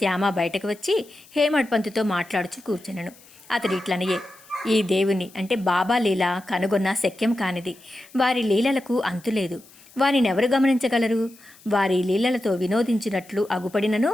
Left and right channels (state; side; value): noise; left; hiss, 25 dB below the sound